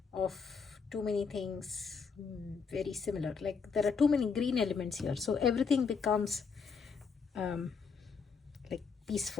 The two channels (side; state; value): right; quieter; 5.5 dB